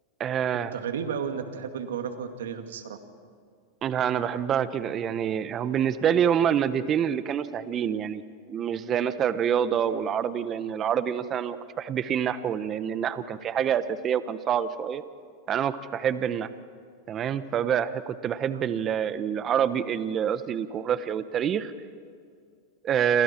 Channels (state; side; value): quieter; left; 8.3 dB